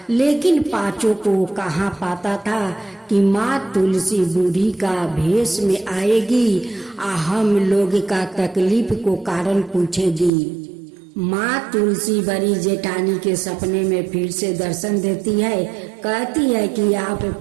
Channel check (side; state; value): left; drops out; at 10.3 s